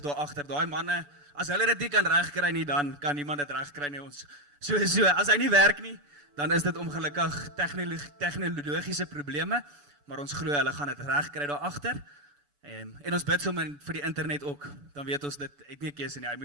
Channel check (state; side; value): late; left; 6.9 ms